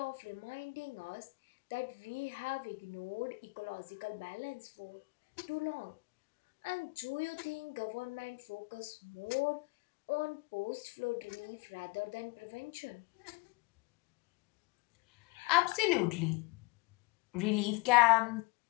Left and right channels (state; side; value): quieter; right; 25.5 dB